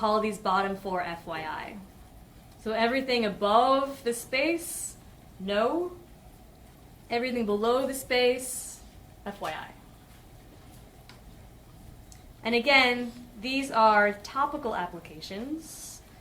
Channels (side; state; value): both; identical; correlation 1.00